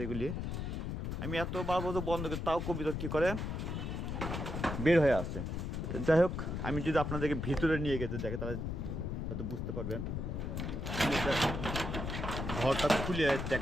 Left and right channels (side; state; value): left; noise; rumble, 3 dB below the sound